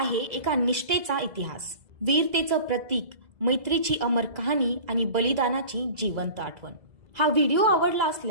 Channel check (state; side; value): late; left; 2.0 ms